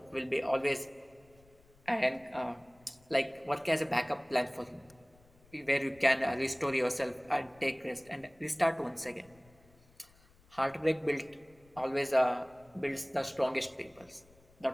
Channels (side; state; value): left; noise; rumble, 29 dB below the sound